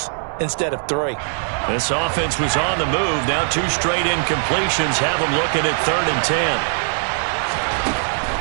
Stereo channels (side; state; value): left; silent; 59 dB below the other